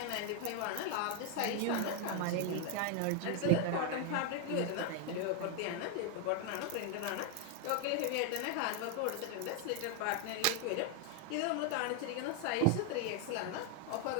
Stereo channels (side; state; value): both; different; correlation 0.01